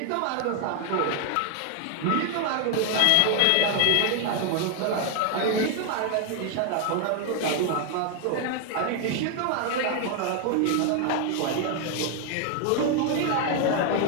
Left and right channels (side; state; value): both; different; correlation 0.01